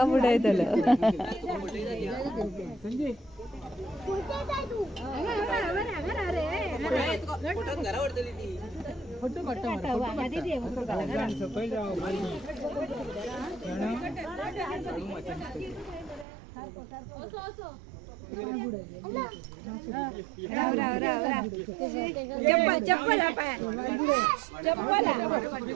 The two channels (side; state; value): left; drops out; at 16.2 s